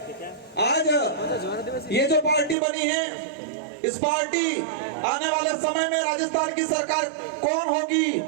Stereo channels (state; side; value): drops out; left; at 2.6 s